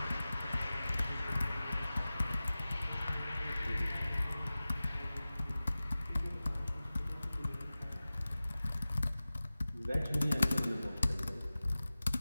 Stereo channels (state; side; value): inverted; both; correlation -0.97